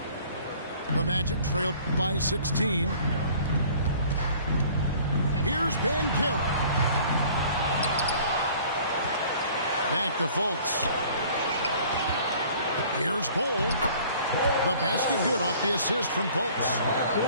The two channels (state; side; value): inverted; both; correlation -0.52